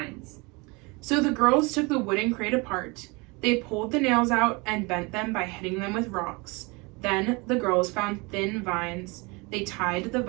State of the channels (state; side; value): quieter; left; 27.2 dB